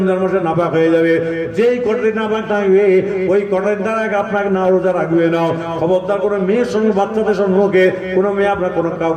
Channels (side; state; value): both; identical; correlation 1.00